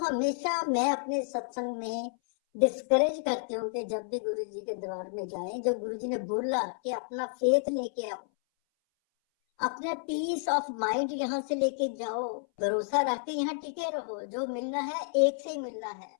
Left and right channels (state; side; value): silent; right; 57 dB below the other